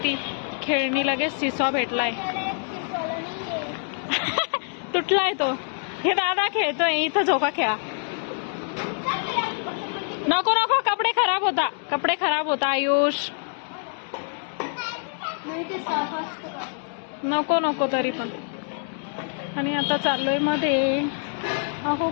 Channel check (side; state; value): right; silent; 61 dB below the other